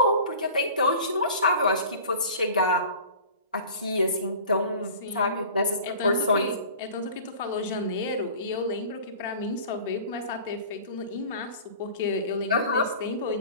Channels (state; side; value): inverted; both; correlation -0.41